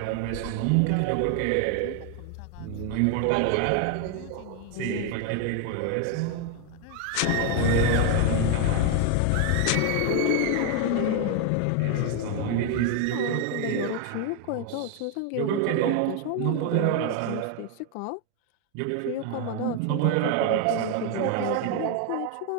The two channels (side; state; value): both; different; correlation 0.01